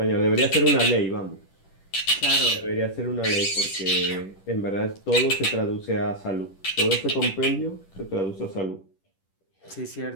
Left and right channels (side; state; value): right; late; 10 ms